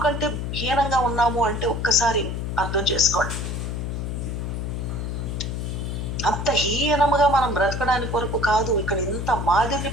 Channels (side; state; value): left; noise; hum, 3 dB below the sound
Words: కంటే హీనంగా ఉన్నాము అంటే ఒక్కసారి అర్థం చేసుకోండి. అంత హీనముగా మనం బ్రతకడానికి కొరకు కాదు ఇక్కడ ఇంత మాదిరిని